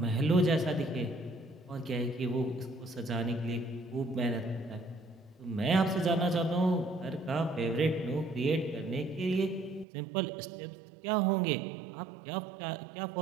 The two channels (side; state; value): left; drops out; at 9.9 s